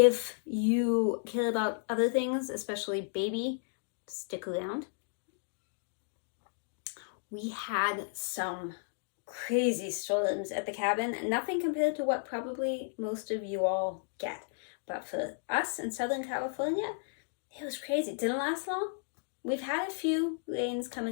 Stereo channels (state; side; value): silent; right; digital silence